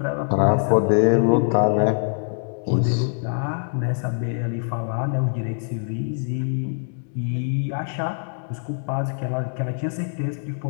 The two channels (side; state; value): right; silent; digital silence